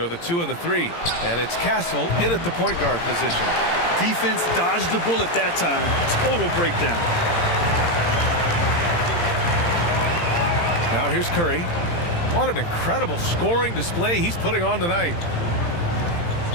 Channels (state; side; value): late; right; 17 ms